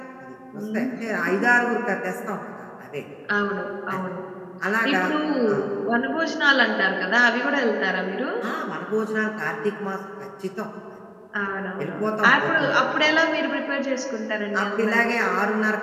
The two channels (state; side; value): identical; both; correlation 1.00